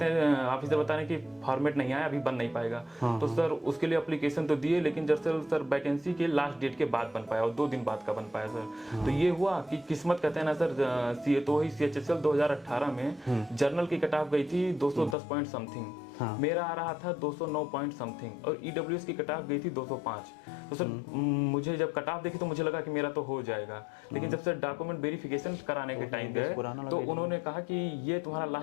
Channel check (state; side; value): drops out; right; at 15.2 s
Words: ऑफिसर बताने की फॉर्मेट नहीं आया, अभी बन नहीं पाएगा। तो सर उसके लिए एप्लीकेशन तो दिए, लेकिन दरअसल सर वैकेंसी के लास्ट डेट के बाद बन पाया और 2 दिन बाद का बन पाया सर। तो ये हुआ कि किस्मत कहते हैं ना सर। तो वही सीएचएसएल 2018 में जर्नल की कट ऑफ गई थी 210 पॉइंट समथिंग, मेरा आ रहा था 209 पॉइंट समथिंग और ईडब्ल्यूएस की कट ऑफ गई थी 205। तो सर मुझे जब कट ऑफ देखी तो मुझे लगा कि मेरा तो हो जाएगा, लेकिन जब सर डॉक्यूमेंट वेरिफिकेशन कराने के टाइम गए तो उन्होंने कहा कि ये तुम्हारा